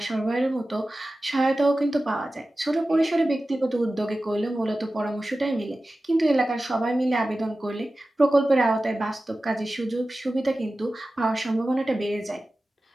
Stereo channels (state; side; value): normal; both; correlation 0.95